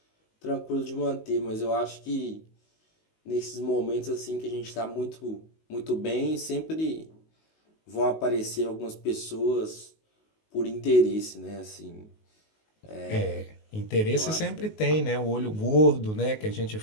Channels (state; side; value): late; right; 19 ms